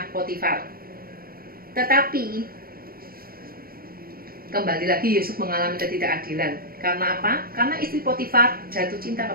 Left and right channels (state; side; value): late; left; 0.43 ms